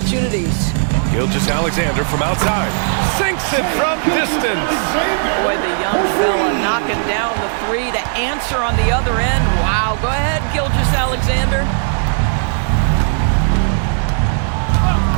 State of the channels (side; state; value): left; silent; digital silence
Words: Gilgeous-Alexander from outside. Sinks it from distance. Boy, the young fella knocking down the 3 to answer on the other end. Wow, go ahead, Gilgeous-Alexander.